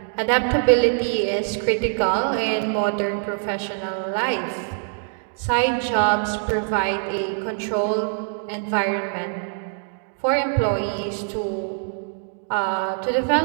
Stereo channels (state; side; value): silent; left; digital silence